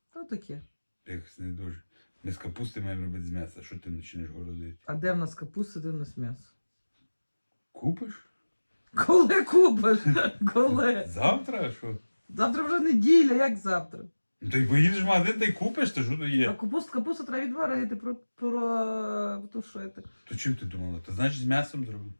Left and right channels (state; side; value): inverted; both; correlation -1.00